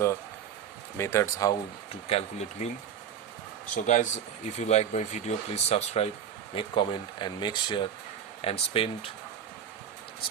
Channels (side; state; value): left; quieter; 8.5 dB